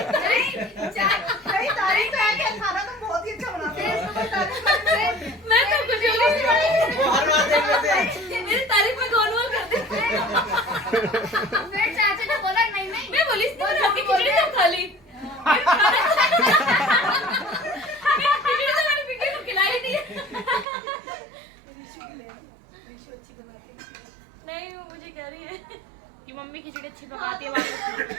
भाई तारीफ है कि खाना तो बहुत ही अच्छा बनाते हैं। मैं तो कुछ वो हर बात देख लेते हैं। मेरी तारीफ में गोलमोल करते हैं। फिर चाचू ने बोला नहीं नहीं। मैं बोली इसने बना के खिचड़ी तो खा ली, खिचड़ी तो मैंने पिंकी को खिलाई दी। नहीं वो मुझे कह रही है कि मम्मी खिचड़ी अच्छी पकाती है,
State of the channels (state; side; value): drops out; left; at 20.7 s